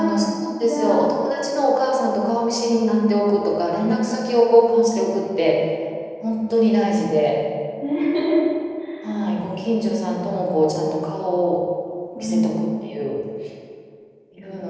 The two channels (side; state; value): both; identical; correlation 1.00